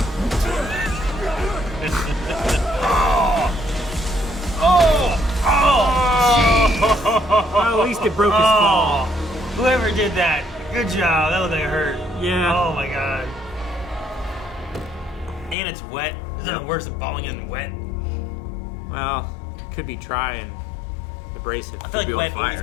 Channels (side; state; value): right; drops out; at 15.6 s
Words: Well, at least it broke his fall. Whoever did that, good job. That looked like it hurt. Yeah. Oh my god. And it's wet. Is that worse than falling in wet? Well, could be trying to brace it. I feel like be on wet fire.